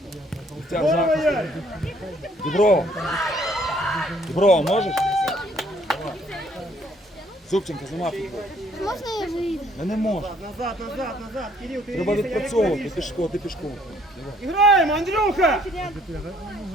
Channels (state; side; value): normal; both; correlation 0.63